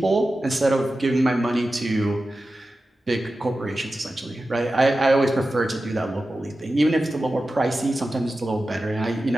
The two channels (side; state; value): both; normal; correlation 0.93